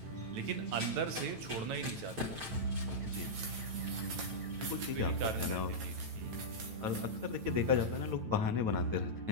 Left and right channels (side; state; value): left; late; 9.0 ms